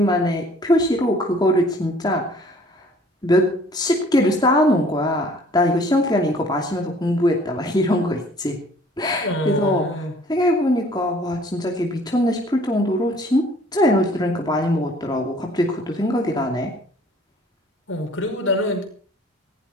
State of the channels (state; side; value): normal; both; correlation 0.54